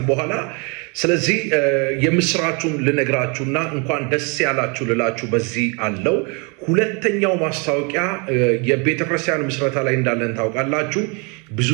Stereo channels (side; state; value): left; quieter; 32.7 dB